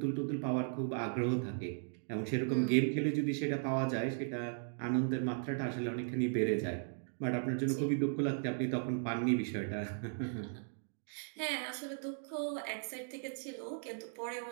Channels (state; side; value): silent; left; digital silence